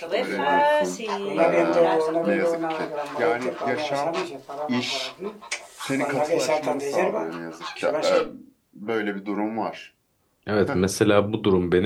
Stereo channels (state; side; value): identical; both; correlation 1.00